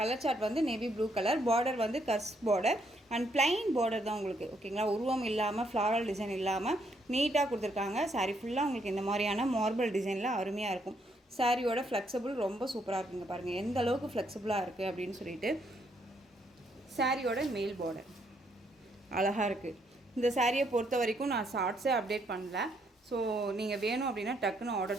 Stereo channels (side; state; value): both; normal; correlation 0.73